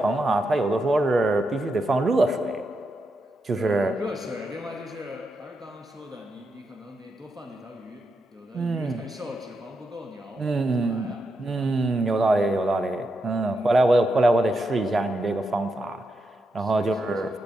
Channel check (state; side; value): normal; both; correlation 0.84